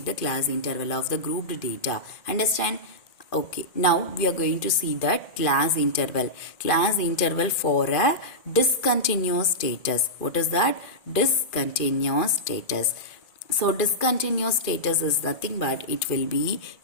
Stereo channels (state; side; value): late; right; 2.5 ms